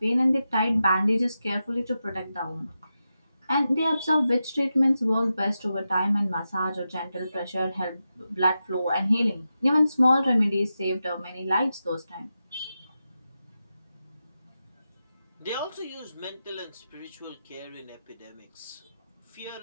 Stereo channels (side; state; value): both; inverted; correlation -0.90